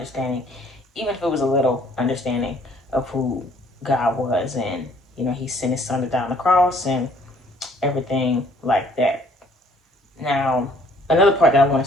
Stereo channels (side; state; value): both; normal; correlation 0.60